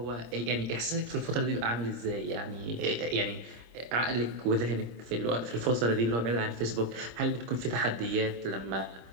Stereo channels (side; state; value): left; late; 26 ms